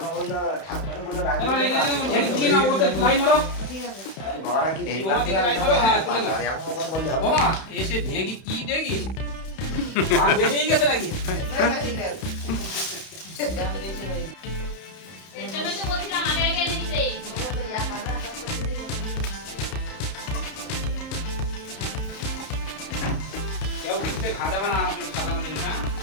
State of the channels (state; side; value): late; right; 31 ms